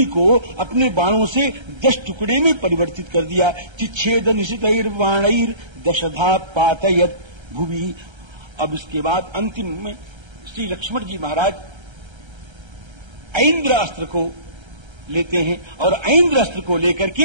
को अपने बाणों से 10 टुकड़े में परिवर्तित कर दिया। चिच्छेद निशितैर बाणैर दशधा पातयत भुवि। अब इसके बाद अंतिम में श्री लक्ष्मण जी महाराज ऐन्द्र अस्त्र को लेते हैं, और ऐन्द्र अस्त्र को लेकर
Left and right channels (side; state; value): left; late; 1.3 ms